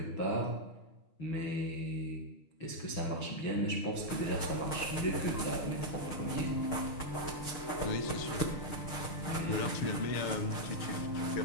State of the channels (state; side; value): late; right; 6.4 ms